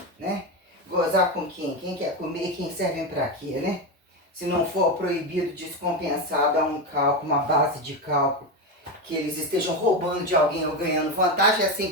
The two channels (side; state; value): both; normal; correlation 0.14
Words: né? Gozar com quem? Quem quer comer e quem servem para quê, né? Se não for proibido, dispensado a um cálculo, uma base de cálculo, que eles estejam roubando de alguém ou ganhando vantagem, essa